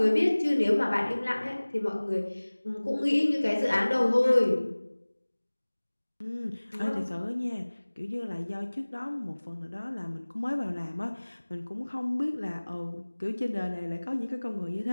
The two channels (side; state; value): both; inverted; correlation -1.00